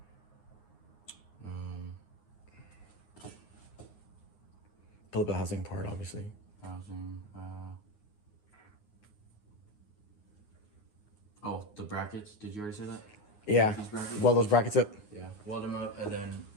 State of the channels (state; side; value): late; right; 9.6 ms